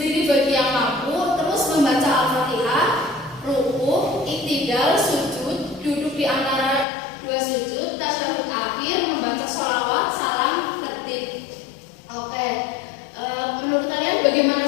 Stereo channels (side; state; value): right; drops out; at 6.9 s